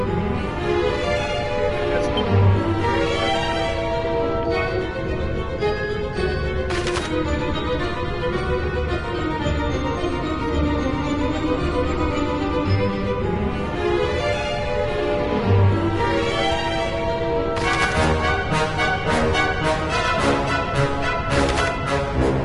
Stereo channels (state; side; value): identical; both; correlation 1.00